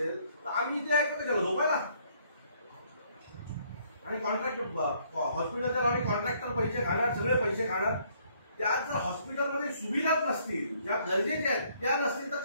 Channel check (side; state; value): both; inverted; correlation -0.66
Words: तर आम्ही इथे ऐकतो त्याला झोपायला. आणि कॉन्ट्रॅक्ट हॉस्पिटलच्या नावाने कॉन्ट्रॅक्टर पैसे खाणार, सगळे पैसे खाणार. त्यात जर हॉस्पिटलमध्ये सुविधाच नसतील, ज्या गरजेच्या आहेत त्या नसतील तर